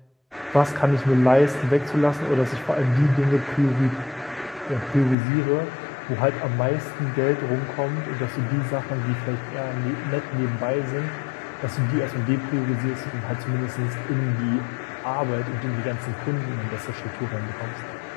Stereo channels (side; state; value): right; drops out; at 5.2 s